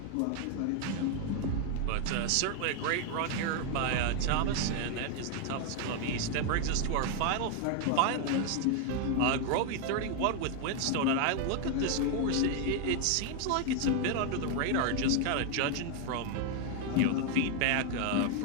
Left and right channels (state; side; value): different; both; correlation 0.01